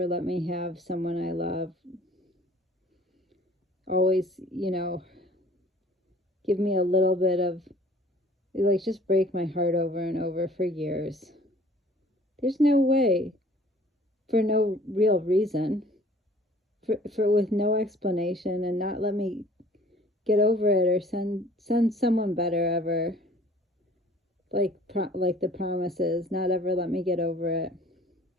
let me have someone I love, always, give me a little bit of, just break my heart over and over for years. There's no way, for no real reason, for with no explanation, and not let me get over it or send someone better ever, like the promises, not ever let me get over it,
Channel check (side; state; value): both; normal; correlation 0.52